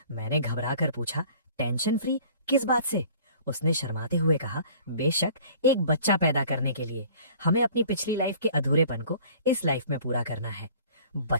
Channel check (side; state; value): both; inverted; correlation -0.50